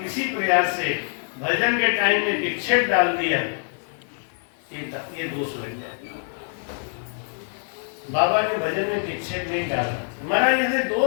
प्रयास से भजन के टाइम में विक्षेप डाल दिया, ये दोष लग जाए। बाबा के भजन में विक्षेप नहीं डाला। महाराज जैसे 2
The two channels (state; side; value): silent; right; 61 dB below the other